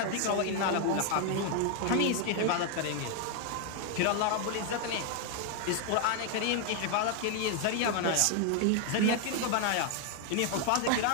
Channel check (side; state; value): both; different; correlation 0.00